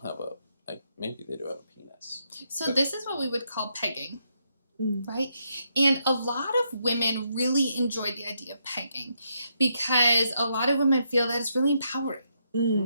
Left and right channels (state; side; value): inverted; both; correlation -0.78